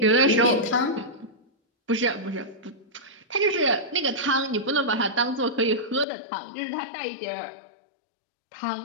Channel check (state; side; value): drops out; right; at 6.1 s